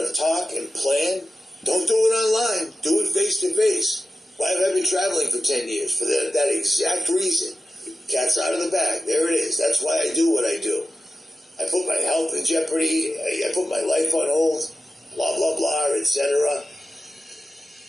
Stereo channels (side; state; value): both; normal; correlation 0.94